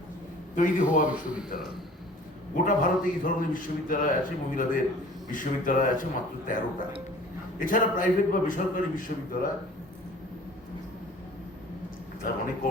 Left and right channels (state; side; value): normal; both; correlation 0.48